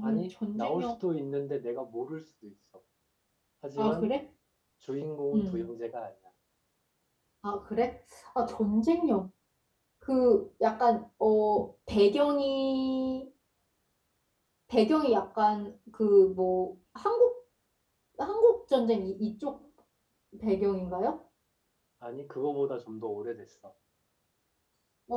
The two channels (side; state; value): both; identical; correlation 1.00